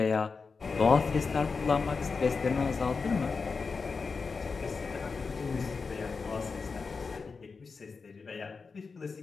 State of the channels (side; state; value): right; quieter; 4.8 dB